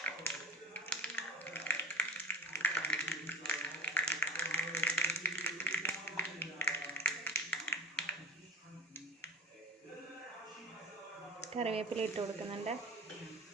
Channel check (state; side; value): normal; both; correlation 0.35